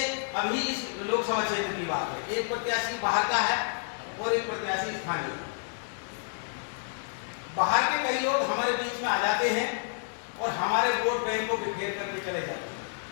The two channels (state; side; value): silent; right; 58 dB below the other